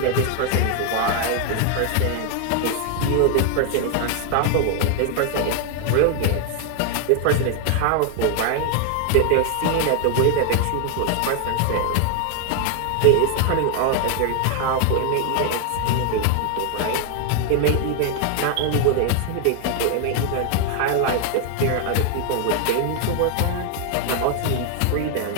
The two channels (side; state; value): both; different; correlation 0.00